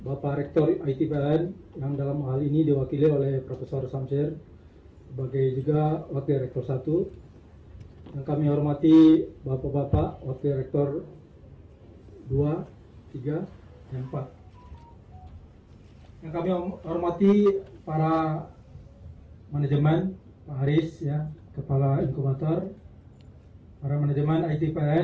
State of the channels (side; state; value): both; identical; correlation 1.00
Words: Rektor ITPLN yang dalam hal ini diwakili oleh Profesor Samsir sebagai juga Wakil Rektor 1. Yang kami hormati Bapak-Bapak Wakil Rektor 2, 3, dan 4. Yang kami hormati para manajemen, Pak Haris ya, Kepala Inkubator, para manajemen